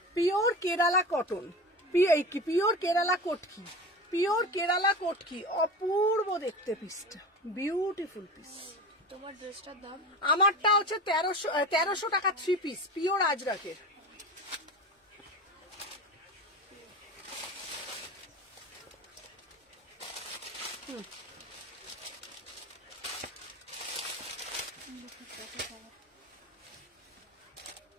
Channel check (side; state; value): both; normal; correlation 0.29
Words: Pure Kerala cotton, pure Kerala Kotki, pure Kerala Kotki, অপূর্ব দেখতে পিসটা, বিউটিফুল পিস। তোমার ড্রেসটার দাম? আমারটা হচ্ছে 1300 টাকা 3 পিস, পিওর আজরাকের।